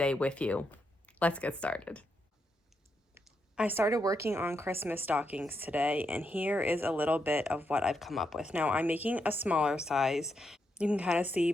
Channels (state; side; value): normal; both; correlation 0.82